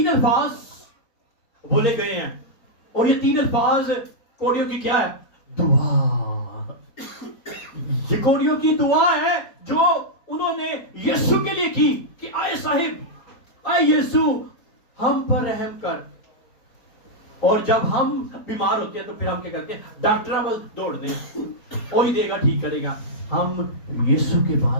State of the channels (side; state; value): right; late; 4.3 ms